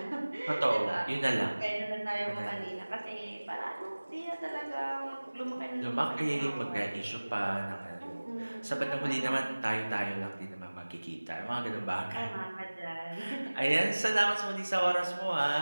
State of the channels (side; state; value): both; inverted; correlation -1.00